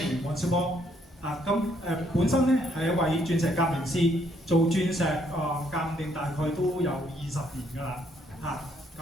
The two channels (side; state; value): both; normal; correlation 0.70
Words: 黃少波。本身咧係一位鑽石鑑定師，做鑽石鑑定大概都有20年㗎啦。